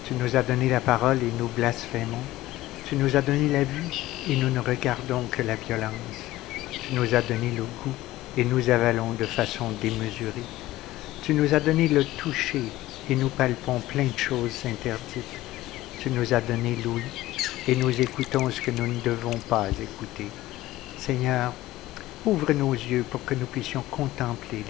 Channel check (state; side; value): quieter; right; 16.3 dB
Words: Tu nous as donné la parole et nous blasphémons. Tu nous as donné la vue et nous ne regardons que la violence. Tu nous as donné le goût et nous avalons de façon démesurée. Tu nous as donné le toucher et nous palpons plein de choses interdites. Tu nous as donné l'ouïe et nous écoutons ce que nous ne devons pas écouter. Seigneur, ouvre nos yeux pour que nous puissions contempler